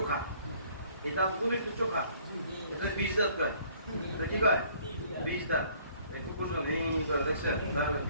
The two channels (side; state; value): both; inverted; correlation -0.59